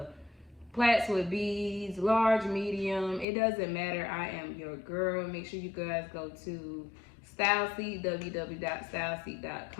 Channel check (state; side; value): drops out; right; at 3.2 s